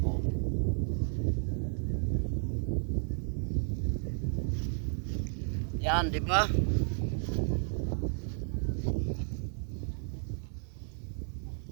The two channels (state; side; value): silent; left; 56 dB below the other